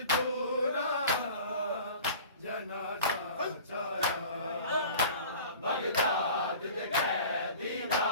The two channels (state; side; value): inverted; both; correlation -0.42